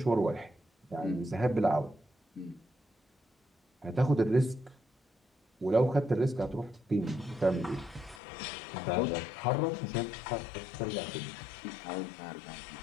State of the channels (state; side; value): drops out; right; at 8.2 s